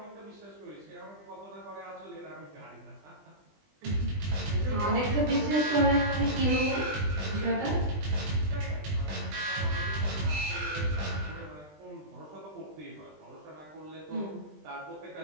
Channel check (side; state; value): left; late; 20 ms